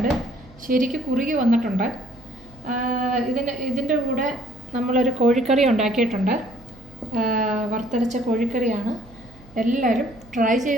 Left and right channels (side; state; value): right; noise; hum, 23 dB below the sound